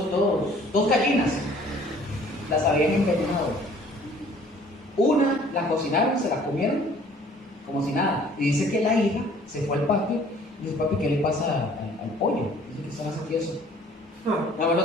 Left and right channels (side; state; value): both; normal; correlation 0.54